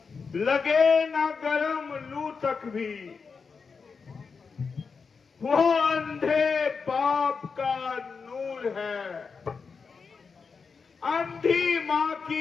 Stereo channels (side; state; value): right; quieter; 5.2 dB